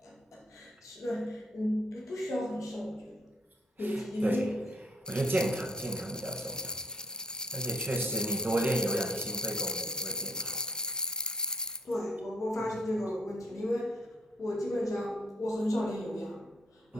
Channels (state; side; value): normal; both; correlation 0.67